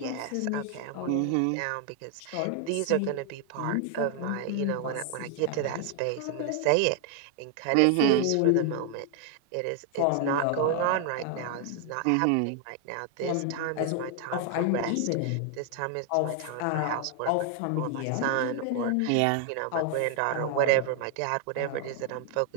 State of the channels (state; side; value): different; both; correlation 0.00